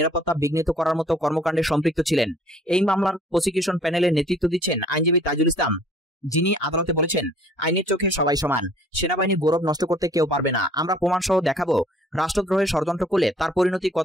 বিঘ্নিত করার মতো কর্মকাণ্ডে সম্পৃক্ত ছিলেন। এই মামলার প্রসিকিউশন প্যানেলের নেতৃত্ব দিচ্ছেন আইনজীবী তাজুল ইসলাম, যিনি আদালতে বলেছেন, আইনের চোখে সবাই সমান। সেনাবাহিনীর গৌরব নষ্ট করতে কেউ পারবে না। আমরা প্রমাণ সহ দেখাবো রাষ্ট্রদ্রোহের ষড়যন্ত্র করলে তার পরিণতি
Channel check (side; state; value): both; normal; correlation 0.56